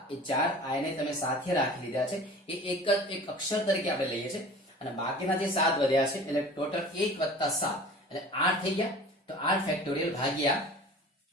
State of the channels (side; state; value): both; normal; correlation 0.41